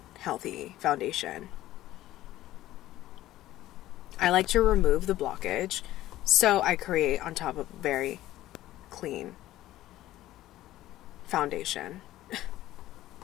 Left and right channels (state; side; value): quieter; right; 14.9 dB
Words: healthy foundation. I like to remove the blockage, so I create on top of a very clean foundation.